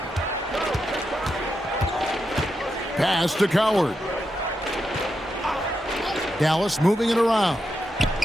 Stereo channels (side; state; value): both; normal; correlation 0.85